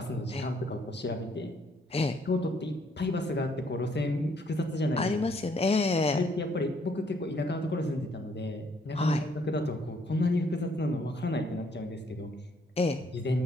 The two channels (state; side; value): normal; both; correlation 0.67